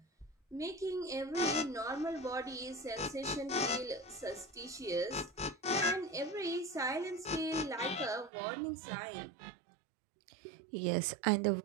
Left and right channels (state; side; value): drops out; left; at 8.3 s